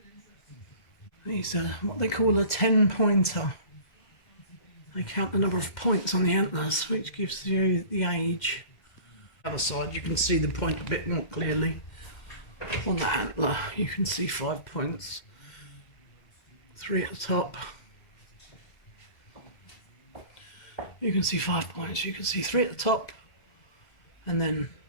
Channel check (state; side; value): late; right; 2.1 ms